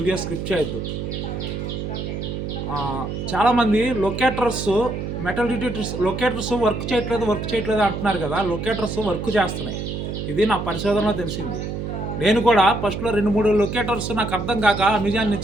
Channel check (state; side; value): noise; right; hum, 5 dB below the sound